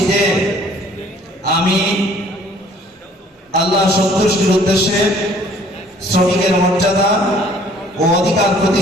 যে আমি আল্লাহ সন্তুষ্টির উদ্দেশ্যে শ্রমিকের মর্যাদা ও অধিকার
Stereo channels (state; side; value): normal; both; correlation 0.57